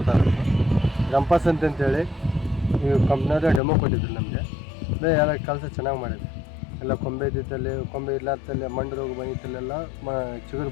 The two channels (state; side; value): drops out; right; at 3.6 s